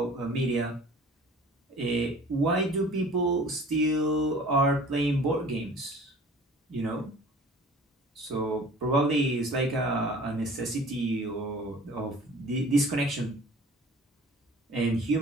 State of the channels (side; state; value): both; normal; correlation 0.46